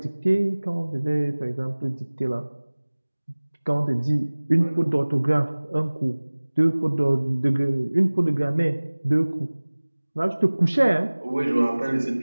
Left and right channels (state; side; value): inverted; both; correlation -1.00